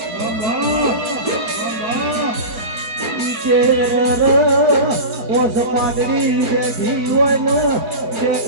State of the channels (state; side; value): late; left; 4.7 ms